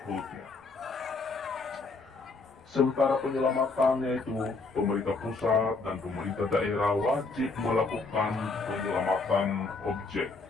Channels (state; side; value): quieter; right; 3.9 dB